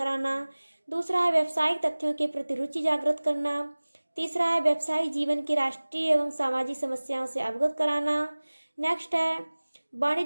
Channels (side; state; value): both; inverted; correlation -1.00